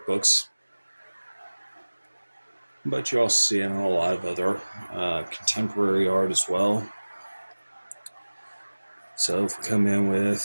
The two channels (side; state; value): both; inverted; correlation -1.00